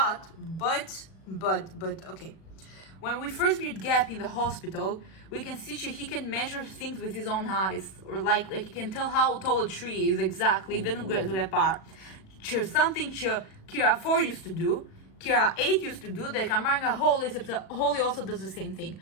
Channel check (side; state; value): right; late; 37 ms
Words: but okay. When we first meet Gap in the hospital, we can see he can measure things with his own eyes, or like he can tell how tall a tree is exactly. Didn't go to that part. Something Kira 4 used to do, Kira 8 used to do, that Kamanga Holy, except that Holy also does the same thing.